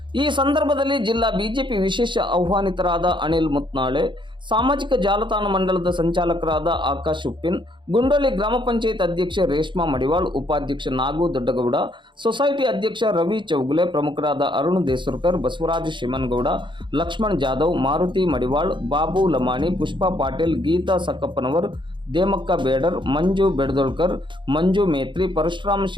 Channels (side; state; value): left; late; 0.23 ms